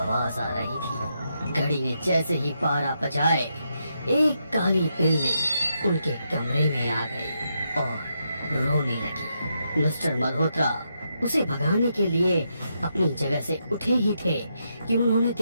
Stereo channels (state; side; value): inverted; both; correlation -0.82